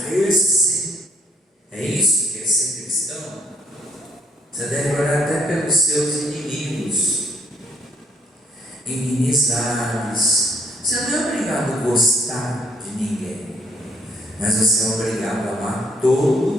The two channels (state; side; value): normal; both; correlation 0.65